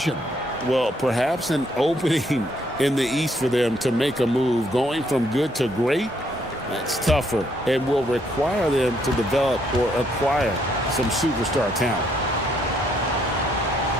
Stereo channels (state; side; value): normal; both; correlation 0.71